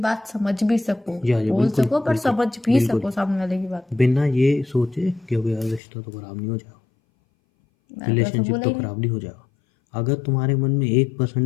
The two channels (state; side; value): drops out; right; at 5.8 s